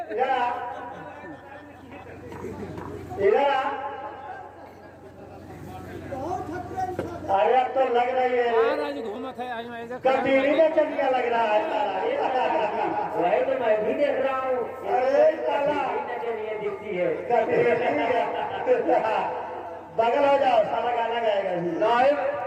इधर आ, इधर आ। अरे अब तो लग रही है घूमत है आज मैं कटीली में चलिया लग रहा है साला। वही तो मैं भी देख रहा हूँ। अरे साला चलिए दिखती है। बगल हो जाओ, साला गाना गाएगा भी। नहीं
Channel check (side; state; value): both; identical; correlation 1.00